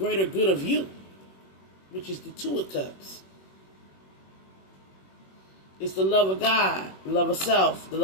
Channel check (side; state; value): right; late; 21 ms